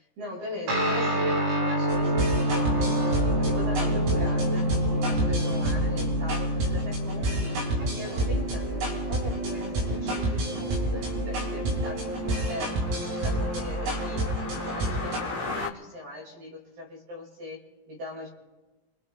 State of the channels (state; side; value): late; left; 17 ms